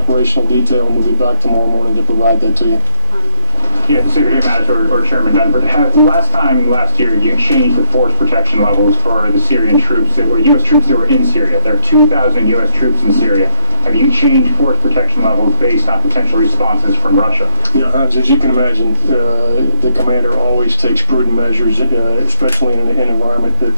detail, and we'll be back tomorrow morning to provide that to you. Yeah, Secretary Mattis or Chairman Dunford, last year, you changed the force protection levels for the Syrian troops that were U.S. troops that were in Syria. There are 2,000 U.S. troops in Syria. Have you changed force protection levels based on potential responses from Russia? Yeah, Hans, as you can imagine, the commander always takes prudent measures, especially in an environment that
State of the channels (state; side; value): inverted; both; correlation -0.48